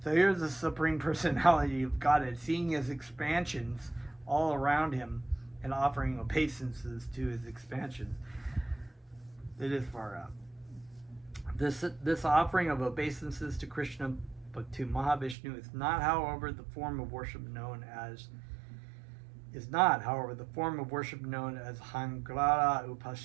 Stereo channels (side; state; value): left; drops out; at 15.4 s